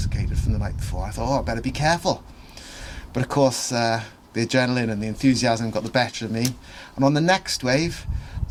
from the night before. I thought, I better be careful. But of course, the adrenaline and the enthusiasm got the better of me, and on the next wave,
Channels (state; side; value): identical; both; correlation 1.00